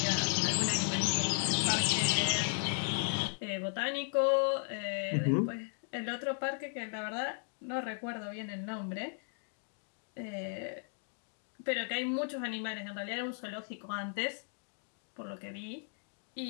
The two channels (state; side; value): silent; right; 54 dB below the other